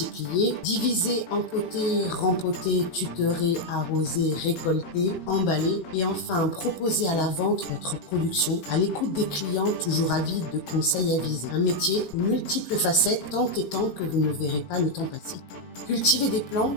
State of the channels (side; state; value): right; late; 18 ms